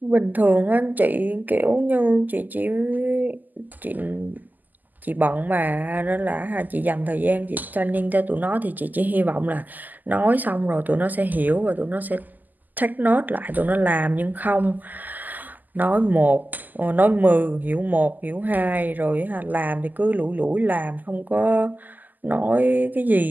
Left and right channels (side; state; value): left; late; 0.084 ms